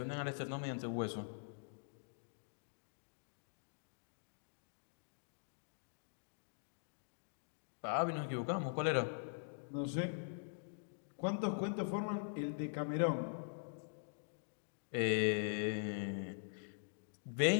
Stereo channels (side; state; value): right; silent; digital silence